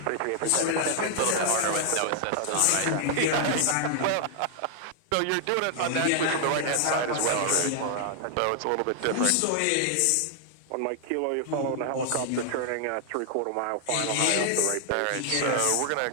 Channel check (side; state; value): both; different; correlation 0.00